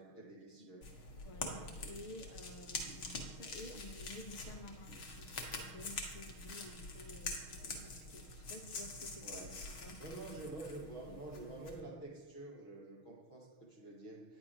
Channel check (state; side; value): late; right; 6.4 ms